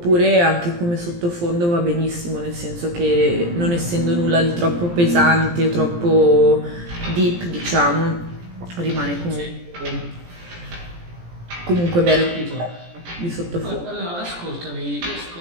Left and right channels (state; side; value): late; left; 17 ms